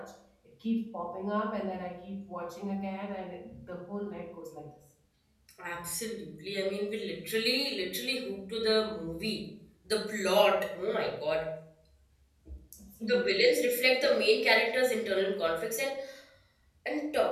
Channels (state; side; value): identical; both; correlation 1.00